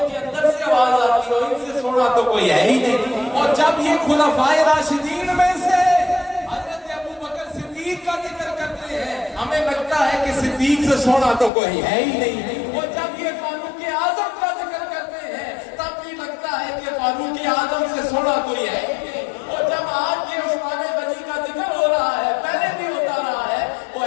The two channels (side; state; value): right; drops out; at 11.5 s